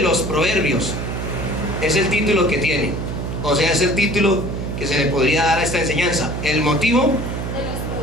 los proverbios, es el título que tiene, o sea, es el título que se le podría dar a esta enseñanza, el motivo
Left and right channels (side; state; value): right; noise; hum, 4 dB below the sound